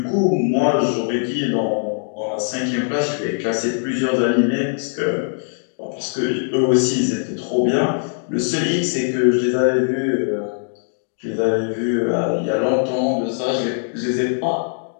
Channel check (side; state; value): right; silent; digital silence